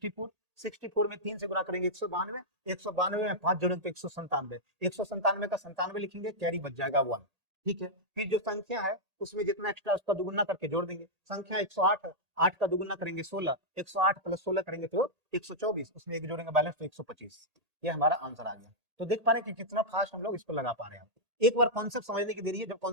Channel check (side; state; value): left; late; 1.8 ms